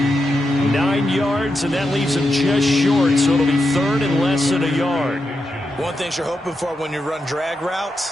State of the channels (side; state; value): both; normal; correlation 0.87